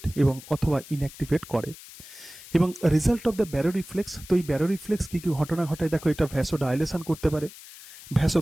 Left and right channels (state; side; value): noise; left; hiss, 17 dB below the sound